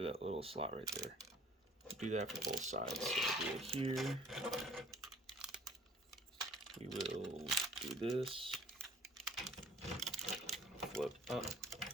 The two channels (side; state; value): both; normal; correlation 0.53